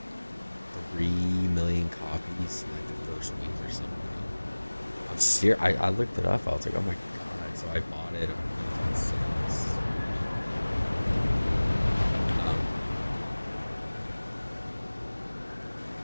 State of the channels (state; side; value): inverted; both; correlation -1.00